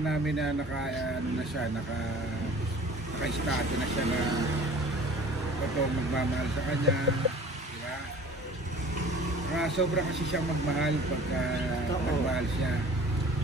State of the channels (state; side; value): normal; both; correlation 0.46